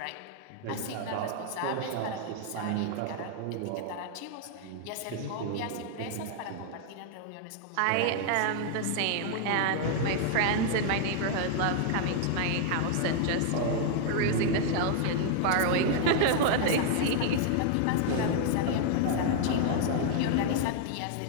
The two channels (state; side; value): different; both; correlation 0.00